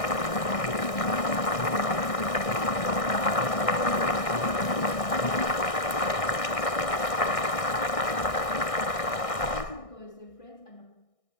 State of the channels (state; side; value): late; right; 1.6 ms